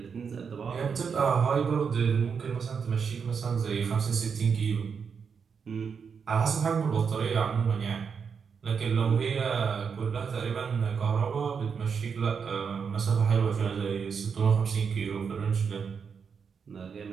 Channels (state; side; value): quieter; left; 6.2 dB